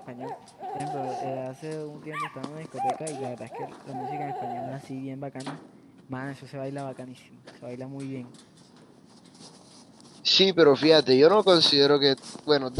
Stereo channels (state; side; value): identical; both; correlation 1.00